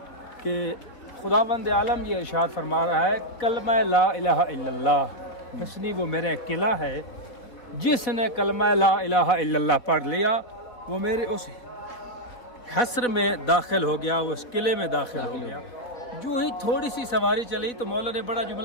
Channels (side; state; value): right; late; 3.8 ms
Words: कि खुदावंद आलम ये इरशाद फरमा रहा है कलमा ला इलाहा इल्लल्लाह हिस्नी, वो मेरा किला है, जिसने कलमा ला इलाहा इल्लल्लाह पढ़ लिया वो मेरे उस हस्र में दाखिल हो गया, वो उस किले में दाखिल हो गया। जो ही थोड़ी सी सवारी चली तो मौला ने बड़ा